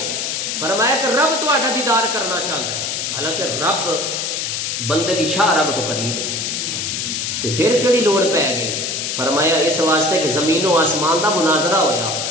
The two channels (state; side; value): noise; left; hiss, 2 dB below the sound